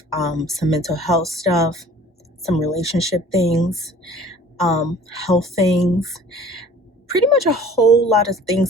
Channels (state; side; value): normal; both; correlation 0.48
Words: some mental health stuff, some relationship things, health things. Pretty much a whole lot of